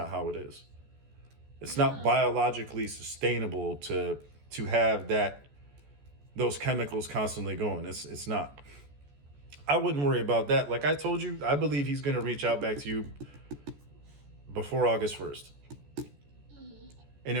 how it is. It's not biologically sustainable to have those chemicals constantly going. It's not. I wouldn't worry about that. Like I told you, I believe he's going to reach out back to you before August 1st. And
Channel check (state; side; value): late; left; 14 ms